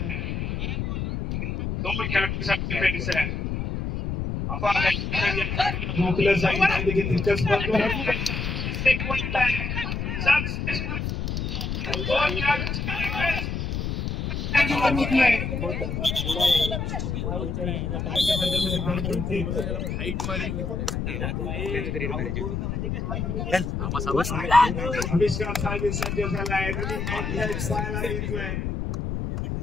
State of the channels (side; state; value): left; noise; rumble, 2 dB below the sound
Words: 2 खेळाडूंसाठी डिफेन्स आहे. रोखलं जाईल देखील तितकंच महत्त्वाचं.